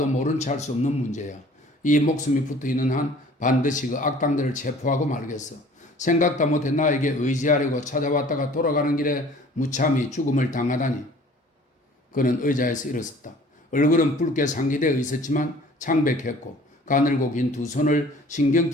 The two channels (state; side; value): normal; both; correlation 0.50